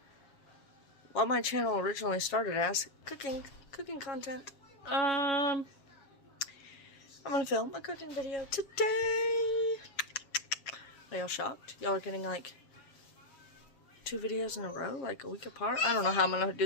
what my channel originally started as, cooking content. I'm gonna film a cooking video today. Are y'all shocked? Y'all are getting like 2 videos in a row, like a week apart? I don't know how I'm gonna do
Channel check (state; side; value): late; right; 7.3 ms